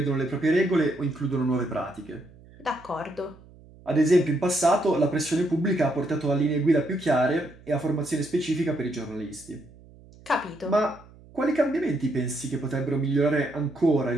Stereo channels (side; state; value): right; noise; hum, 23 dB below the sound